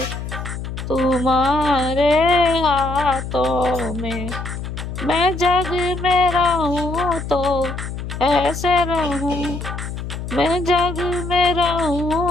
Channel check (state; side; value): noise; left; hum, 7 dB below the sound